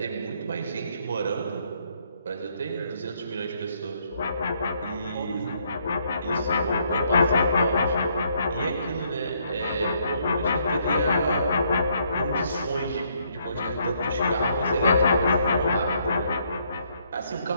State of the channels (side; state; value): both; inverted; correlation -0.70